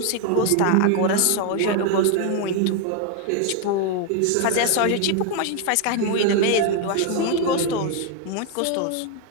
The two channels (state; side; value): different; both; correlation 0.01